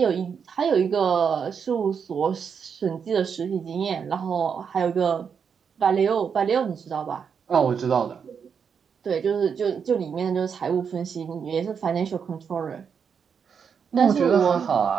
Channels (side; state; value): left; quieter; 6.7 dB